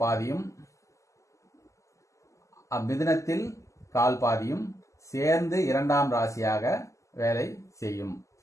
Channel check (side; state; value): right; late; 0.15 ms